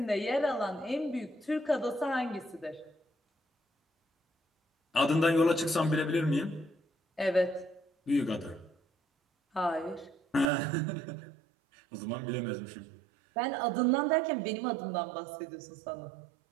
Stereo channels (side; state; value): left; drops out; at 10.5 s